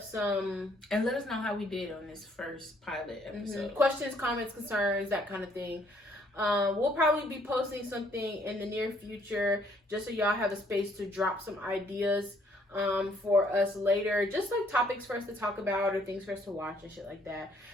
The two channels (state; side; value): normal; both; correlation 0.65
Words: some, and let us know how we did on this first pilot episode. Questions, comments, concerns, that kind of thing. We'll probably be posting something in the near future just so y'all have a space to drop some ideas for us later, just like topics for us to talk about or things for us to watch and shit like that.